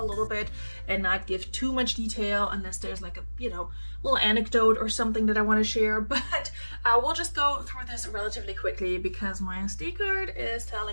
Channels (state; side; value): inverted; both; correlation -1.00